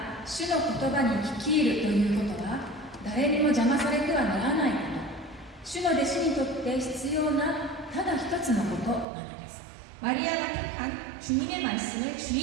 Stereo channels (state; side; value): drops out; left; at 9.1 s